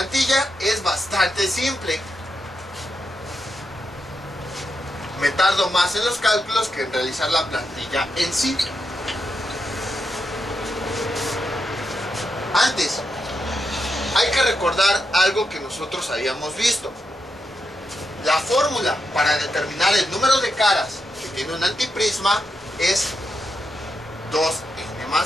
es bastante simple. Me tardo más en los cálculos que en realizar la plantilla en sí. Antes, hay que recordar algo que nosotros habíamos visto. La fórmula para determinar el número de caras que tiene un antiprisma es 2n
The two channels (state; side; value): normal; both; correlation 0.84